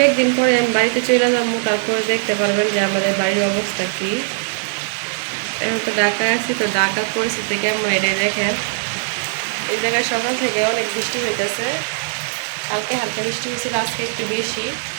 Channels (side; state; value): left; silent; 66 dB below the other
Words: দিন পরে আমি বাড়িতে চলে যাবো, তারপরে দেখতে পারবেন যে আমাদের বাড়ির অবস্থা কি। এখন তো ঢাকায় আছি, তো ঢাকার পরিস্থিতি কেমন এটাই দেখেন। এই জায়গায় সকাল থেকে অনেক বৃষ্টি হইতেছে, কালকে হালকা বৃষ্টি হয়েছিল, আজকে একটু বেশি।